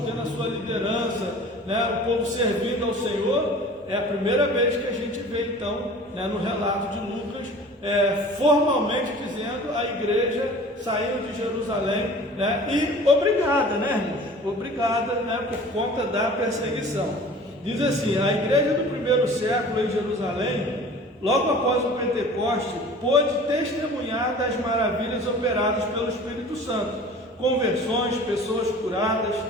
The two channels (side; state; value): both; normal; correlation 0.44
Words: tendo a sua liderança, né, o povo servindo ao Senhor, é a primeira vez que a gente vê então, né, no relato de Lucas, formalmente dizendo a igreja saindo de Jerusalém, né, e obrigada, né, irmãos? Obrigada, né, por conta da perseguição. Diz assim: a igreja do primeiro século em Jerusalém, logo após o Pentecoste, pôde testemunhar das maravilhas operadas pelo Espírito Santo, conversões, pessoas curadas,